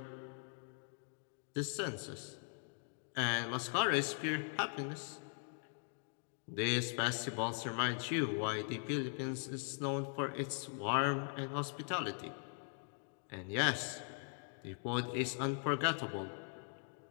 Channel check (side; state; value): right; silent; 51 dB below the other